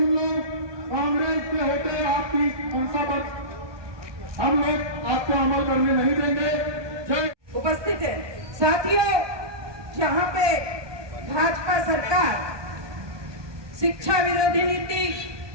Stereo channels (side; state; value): left; late; 1.2 ms